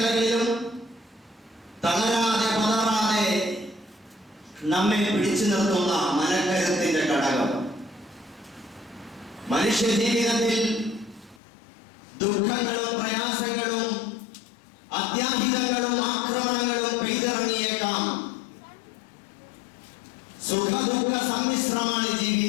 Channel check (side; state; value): right; drops out; at 11.4 s